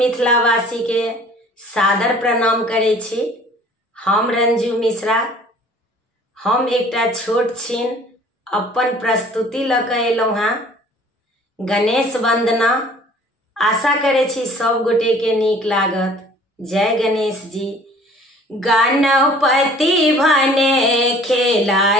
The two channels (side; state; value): both; normal; correlation 0.51